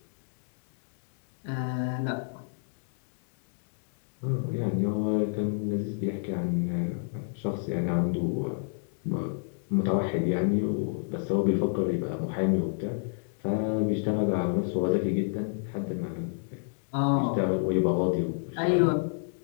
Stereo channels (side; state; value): right; silent; digital silence